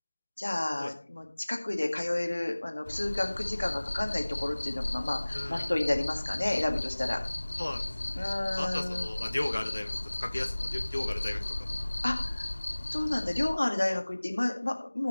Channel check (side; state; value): both; inverted; correlation -1.00